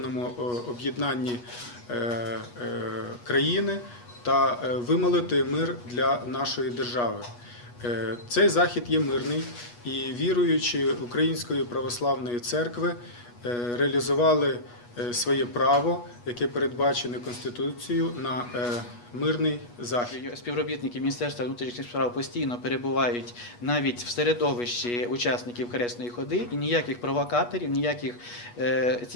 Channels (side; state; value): right; late; 8.3 ms